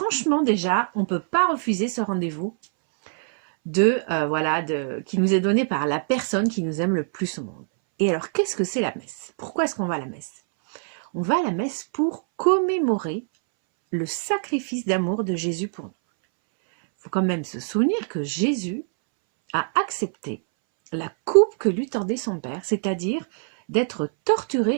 déjà, on ne peut pas refuser ce rendez-vous qui nous est donné par la personne qui nous aime le plus au monde. Et alors, qu'est-ce que c'est la messe? Pourquoi est-ce qu'on va à la messe? On va à la messe pour commémorer le sacrifice d'amour de Jésus pour nous. Il faut quand même se souvenir que Jésus a accepté la coupe que lui tendait son Père, c'est-à-dire d'être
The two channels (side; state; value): left; silent; 63 dB below the other